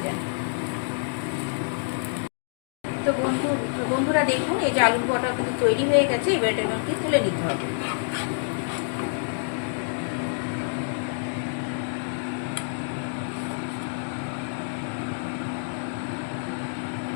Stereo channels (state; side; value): silent; right; digital silence